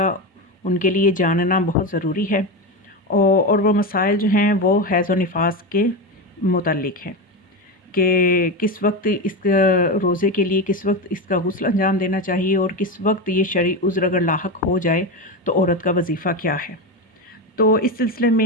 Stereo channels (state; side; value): normal; both; correlation 0.16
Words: ان کے لیے جاننا بہت ضروری ہے، اور وہ مسائل جو ہیں وہ حیض و نفاس کے متعلق ہیں کہ کس وقت اس روزے کے لیے کس وقت اس کا غسل انجام دینا چاہیے، اور کس وقت یہ شرعی عذر اگر لاحق ہو جائے تو عورت کا وظیفہ کیا ہے۔ تو اس سلسلے